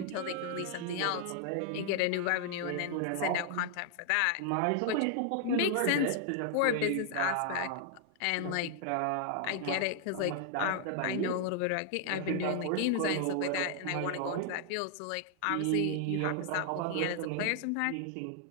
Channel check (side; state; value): both; different; correlation 0.00